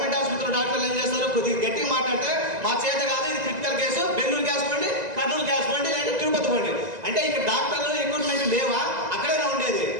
ఆసుపత్రిలో డాక్టర్లు ఏం చేస్తారు, కొద్దిగా గట్టిగా మాట్లాడితే మా చేత కాదు, ఇది క్రిటికల్ కేసు, బెంగళూరు గ్యాస్ పండి, కర్నూలు గ్యాస్ పండి, లేదా తిరుపతి పండి అంటే ఇక్కడ డాక్టర్లు ఎక్విప్మెంట్ లేవా, అక్కడైనా ఉండేది.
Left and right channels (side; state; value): left; late; 1.9 ms